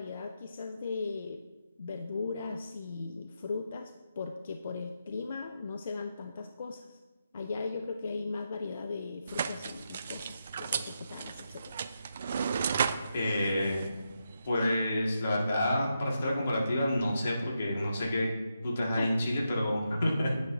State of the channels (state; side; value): inverted; both; correlation -0.84